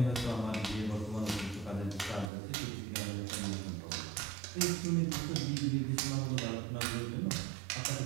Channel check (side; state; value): left; drops out; at 2.3 s